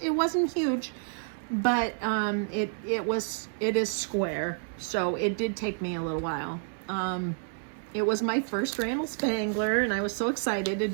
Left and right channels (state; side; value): silent; left; 58 dB below the other